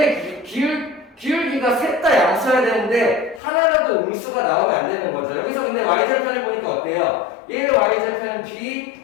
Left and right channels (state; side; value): drops out; right; at 3.4 s